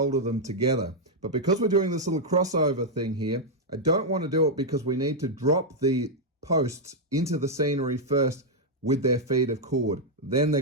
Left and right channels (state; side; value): normal; both; correlation -0.03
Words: them together. But because we're doing this little crossover thing here, I don't want to do it because we need to drop the posts into the scenery first with their feed of cord. Then they're